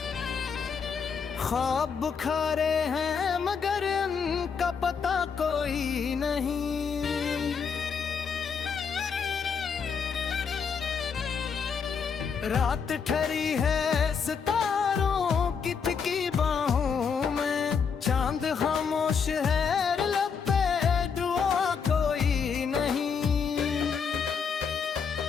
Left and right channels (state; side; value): quieter; right; 6.2 dB